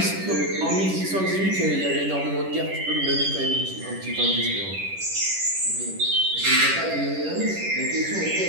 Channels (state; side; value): late; left; 10 ms